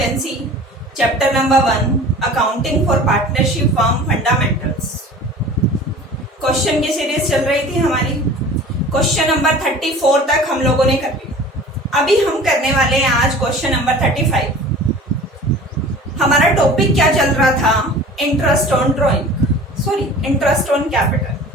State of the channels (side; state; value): both; normal; correlation 0.42